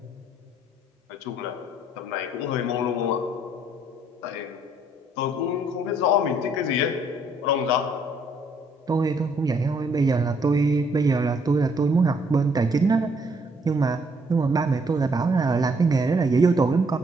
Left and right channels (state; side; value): normal; both; correlation 0.67